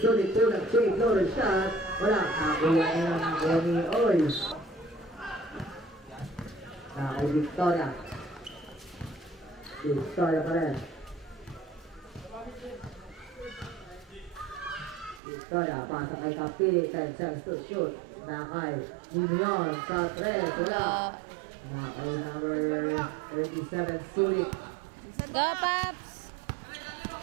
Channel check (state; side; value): drops out; left; at 15.2 s